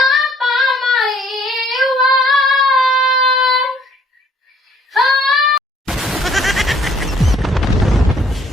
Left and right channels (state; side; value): normal; both; correlation 0.61